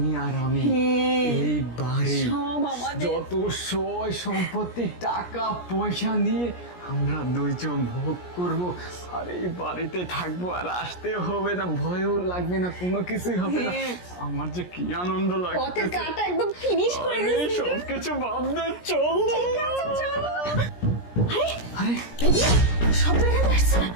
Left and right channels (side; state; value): right; late; 17 ms